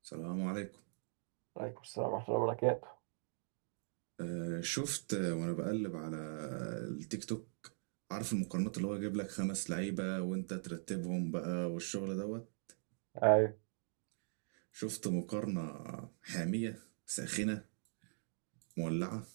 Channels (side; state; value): left; silent; digital silence